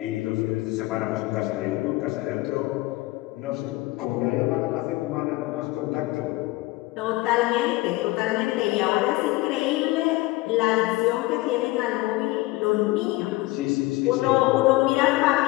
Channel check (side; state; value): right; quieter; 20.2 dB